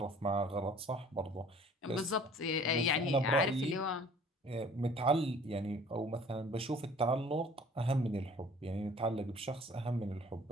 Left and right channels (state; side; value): normal; both; correlation 0.51